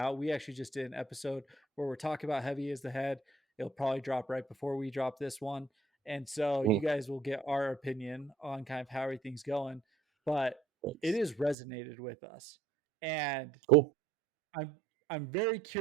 We actually just did an episode where we're talking about Heavy as the Head. It'll probably drop right before we drop this one. And so you guys will get our opinion on kind of how everything's going. But it has resonated with us. And cool. I'm very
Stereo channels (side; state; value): left; drops out; at 11.6 s